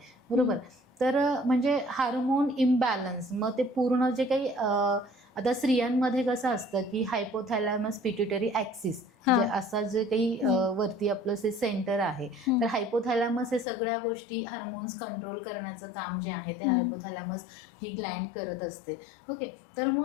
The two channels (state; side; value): drops out; right; at 13.7 s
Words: बरोबर. तर म्हणजे हार्मोन इम्बॅलन्स मग ते पूर्ण जे काही आता स्त्रियांमध्ये कसं असतं की हायपोथॅलॅमस पिट्युटरी ॲक्सिस असा जे काही वरती आपलं जे सेंटर आहे तर हायपोथॅलॅमस हे सगळ्या गोष्टी हार्मोन्स कंट्रोल करण्याचं काम जे आहे ते हायपोथॅलॅमस ही ग्लँड करत असते. ओके. तर